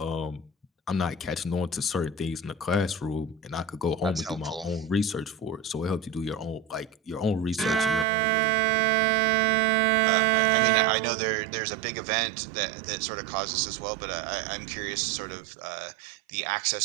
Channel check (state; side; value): drops out; left; at 8.1 s